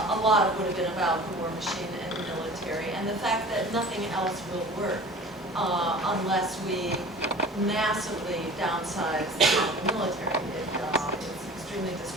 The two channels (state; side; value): normal; both; correlation 0.42